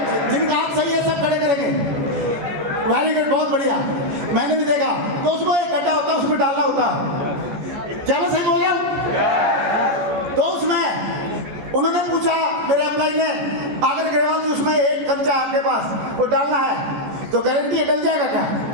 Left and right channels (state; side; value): late; left; 14 ms